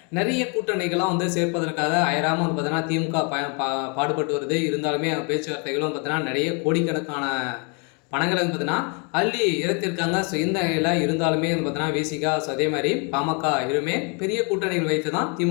நிறைய கூட்டணிகளாம் சேர்ப்பதற்காக அயராமல் பார்த்தீங்கன்னா திமுக பாடுபட்டு வருது. இருந்தாலுமே பேச்சுவார்த்தைகளும் பார்த்தீங்கன்னா நிறைய கோடிக்கணக்கான பணங்களை பார்த்தீங்கன்னா அள்ளி இறத்திருக்காங்க. ஸோ இந்த நிலையில் இருந்தாலுமே பார்த்தீங்கன்னா விசிகா, ஸோ அதே மாதிரி பாமக இருமே பெரிய கூட்டணிகள் வைத்து தான்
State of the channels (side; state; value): right; quieter; 35.0 dB